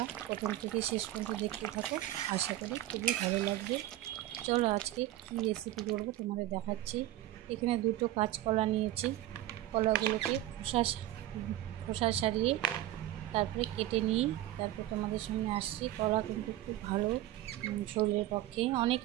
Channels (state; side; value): quieter; left; 14.6 dB